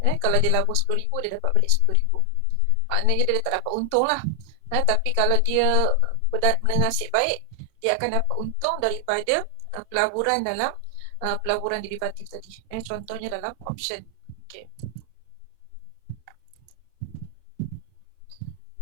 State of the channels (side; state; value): both; different; correlation 0.00